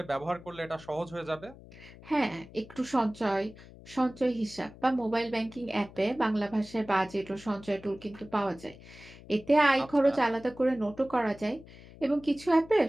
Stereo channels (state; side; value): noise; left; hum, 19 dB below the sound